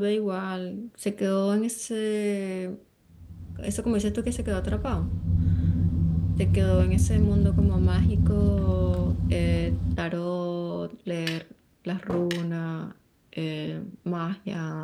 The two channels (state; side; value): identical; both; correlation 1.00